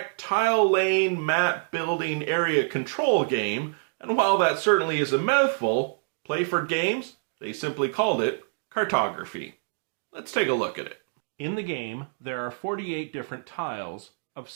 tile lane map building area control game, and while that certainly is a mouthful, Play for Games, they simply called it Cartography. Let's take a look at it. In the game, there are 48 different tiles of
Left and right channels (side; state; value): left; silent; digital silence